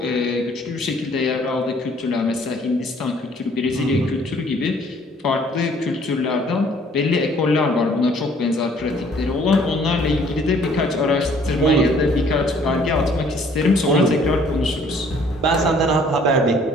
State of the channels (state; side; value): normal; both; correlation 0.59